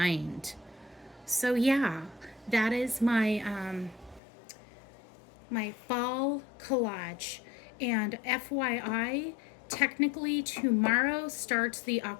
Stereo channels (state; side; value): drops out; right; at 4.2 s